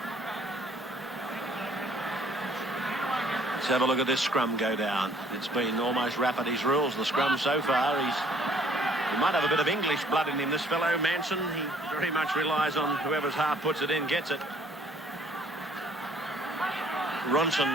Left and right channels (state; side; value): normal; both; correlation 0.60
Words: Let's have a look at this scrum go down. It's been almost Rafferty's rules, the scrum so far. He's He might have a bit of English blood in him, this fellow, Manson. He very much relies on whoever's half puts it in, gets it.